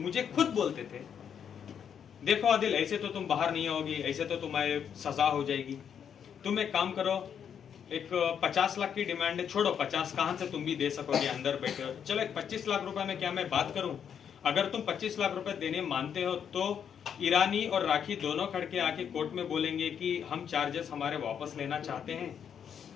खुद बोलते थे देखो आदिल ऐसे तो तुम बाहर नहीं आओगी, ऐसे तो तुम्हारे सजा हो जाएगी, तुम एक काम करो, एक 50 लाख की डिमांड है, छोड़ो 50 कहां से तुम भी दे सकोगे, अंदर बैठे हो, चलो एक 25 लाख रुपए में क्या मैं बात करूं, अगर तुम 25 लाख रुपए देने मानते हो तो ईरानी और राखी दोनों खड़के आके कोर्ट में बोलेंगे कि हम चार्जेस हमारे वापस लेना चाहते हैं,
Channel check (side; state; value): right; quieter; 8.0 dB